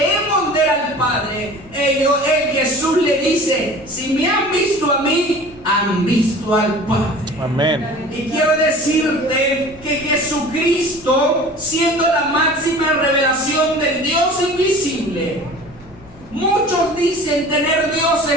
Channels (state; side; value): noise; left; hum, 25 dB below the sound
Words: ver al Padre. Jesús le dice, si me han visto a mí, han visto al Padre. Amén. Y quiero decirte que Jesucristo, siendo la máxima revelación del Dios invisible, muchos dicen tener